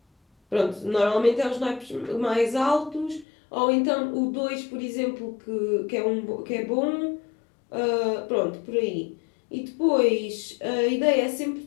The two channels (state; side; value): drops out; right; at 3.2 s